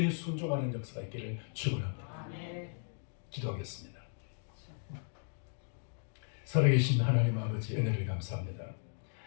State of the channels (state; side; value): silent; right; digital silence